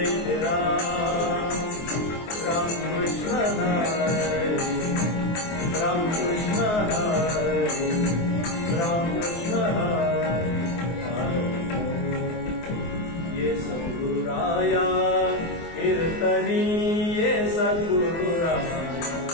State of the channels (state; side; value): late; right; 24 ms